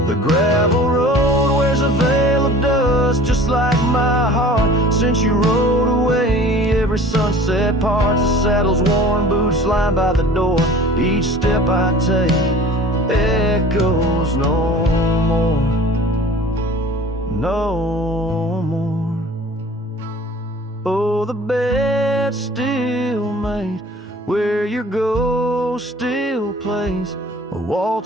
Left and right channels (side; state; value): both; normal; correlation 0.45